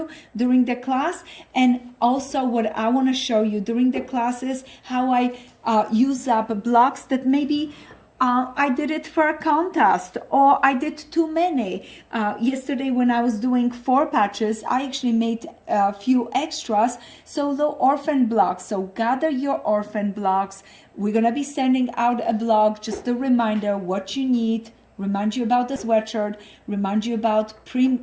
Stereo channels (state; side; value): identical; both; correlation 1.00